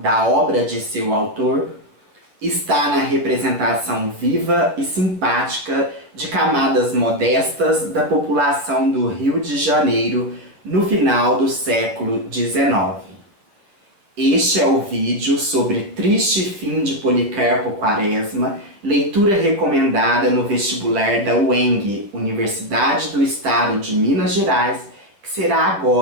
obra de seu autor, está na representação viva e simpática de camadas modestas da população do Rio de Janeiro no final do século XIX. Este é o vídeo sobre Triste Fim de Policarpo Quaresma, leitura recomendada no vestibular da UENG, Universidade do Estado de Minas Gerais, que será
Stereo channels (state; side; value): late; left; 10 ms